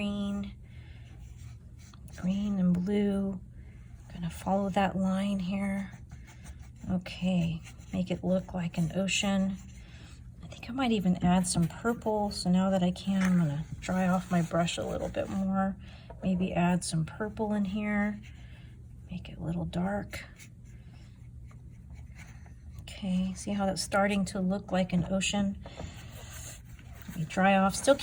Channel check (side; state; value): both; identical; correlation 1.00